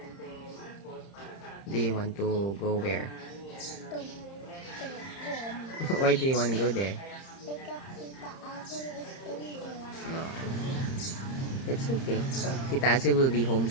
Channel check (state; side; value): late; right; 30 ms